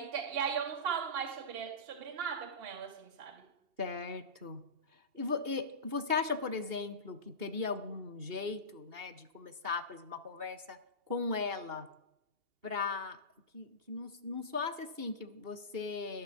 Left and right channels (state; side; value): late; left; 2.8 ms